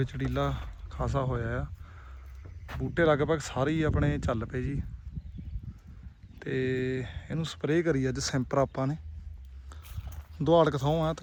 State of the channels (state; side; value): identical; both; correlation 1.00